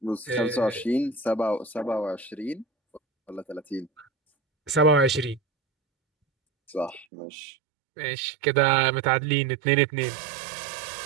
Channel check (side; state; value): left; drops out; at 7.1 s